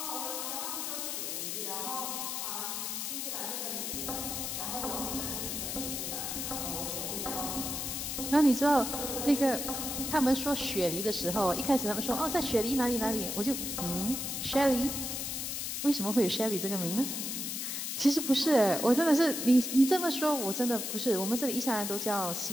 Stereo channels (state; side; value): noise; left; hiss, 3 dB below the sound